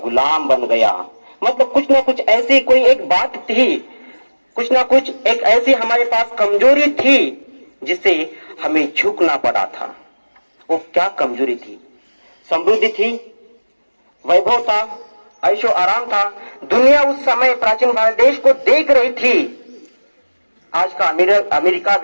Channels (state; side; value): inverted; both; correlation -1.00